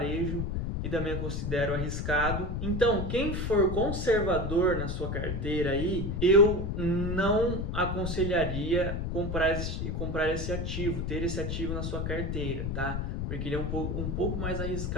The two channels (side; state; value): left; noise; rumble, 2 dB below the sound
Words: e também eu considero arriscado. Então, quem for conservador na sua carteira aí, eu não aconselharia comprar esse ativo, ter esse ativo na sua carteira, tá? Porque ele é um pouco mais